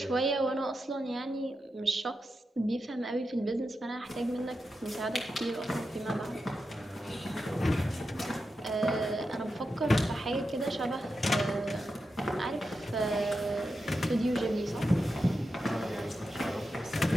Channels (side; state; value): both; normal; correlation 0.89